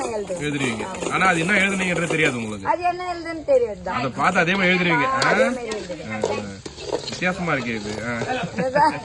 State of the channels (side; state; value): both; identical; correlation 1.00